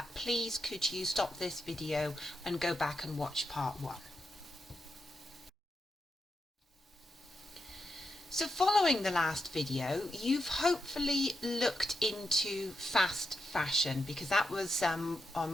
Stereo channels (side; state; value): both; normal; correlation 0.86